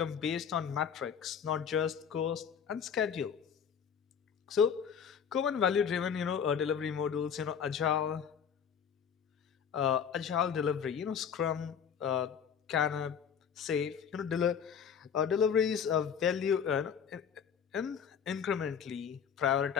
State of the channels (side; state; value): right; quieter; 7.5 dB